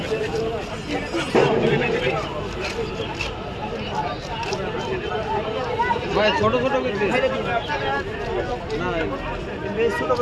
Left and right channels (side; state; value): both; identical; correlation 1.00